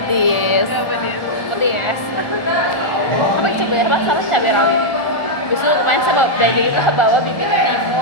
Pedes. Apa coba ya, harus cabai rawit. Biasanya kemarin saya belajar itu saya bawa bibit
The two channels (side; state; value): right; late; 1.4 ms